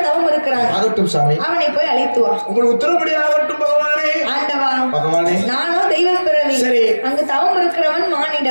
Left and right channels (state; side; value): inverted; both; correlation -1.00